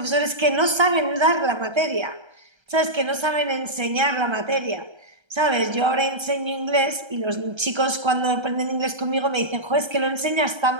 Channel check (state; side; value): late; left; 1.3 ms